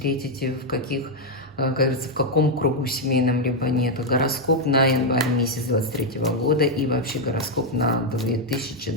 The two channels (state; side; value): normal; both; correlation 0.01